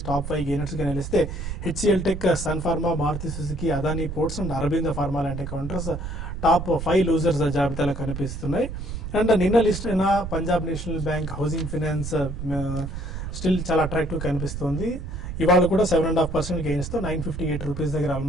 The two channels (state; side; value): noise; right; rumble, 7 dB below the sound